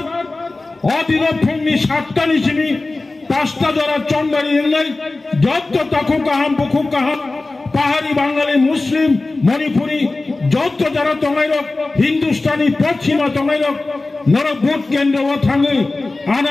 অদিন ফুংনি 7টা নিচিনি 5টা দ্বারা চন্দারি এলাই যত তাকু কাহাম বখু কাহাম পাহাড়ি বাঙালি মুসলিম মণিপুরি যত যারা তঙ্গাইরক হিন্দুস্তানি পশ্চিমা তঙ্গাইরক নর ভোট কেন্দ্র থাঙে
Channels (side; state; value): right; quieter; 3.2 dB